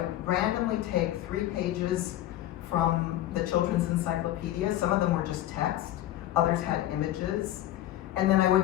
randomly take 3 pages from the children's encyclopedia. Some of them were just text, others had images. And then I would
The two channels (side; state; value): right; quieter; 13.9 dB